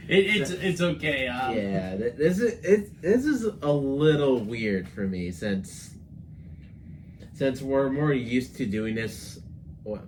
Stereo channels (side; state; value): both; identical; correlation 1.00